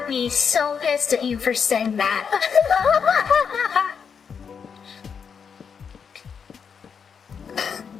be so pissed at you for saying that.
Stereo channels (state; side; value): quieter; right; 6.5 dB